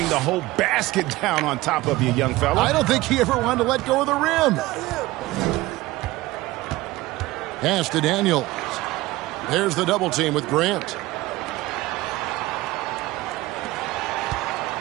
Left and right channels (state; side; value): quieter; left; 18.8 dB